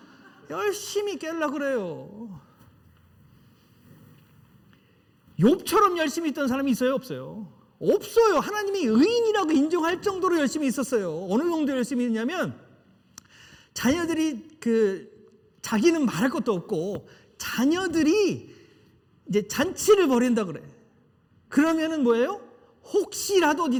열심히 깨려고 그래요. 욥처럼 열심히 있던 사람이 있어요? 없어요? 없어요. 하나님이 의인이라고 인정할 정도로 열심히 있었어요. 어느 정도 열심히 했냐면 자녀들이 자기는 말할 것도 없고 자녀들이 이제 잔치를 벌인다 그래. 그러면은 뭐예요? 혹시라도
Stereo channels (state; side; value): identical; both; correlation 1.00